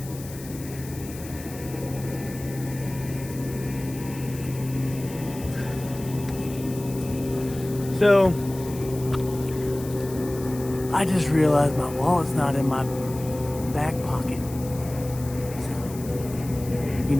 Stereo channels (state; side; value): noise; left; hiss, 16 dB below the sound